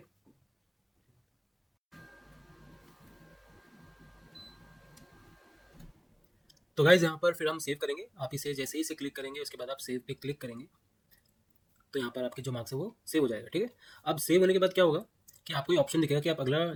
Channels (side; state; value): both; identical; correlation 1.00